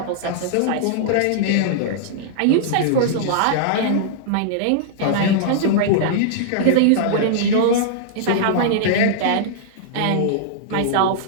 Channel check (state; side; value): different; both; correlation -0.01